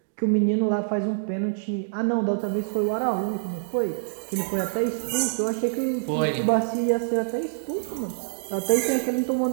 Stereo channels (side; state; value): left; silent; digital silence